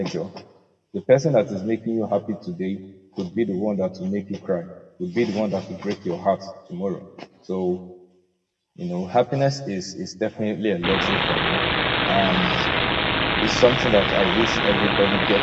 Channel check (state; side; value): identical; both; correlation 1.00